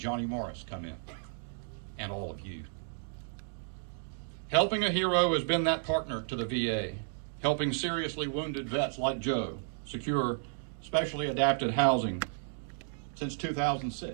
Morris come in, and all of you. Helping a Hero has been that partner to the VA, helping seriously wounded vets like Joe secure specially adapted housing since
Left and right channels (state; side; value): silent; left; digital silence